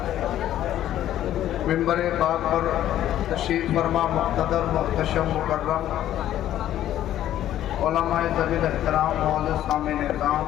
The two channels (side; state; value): right; quieter; 12.3 dB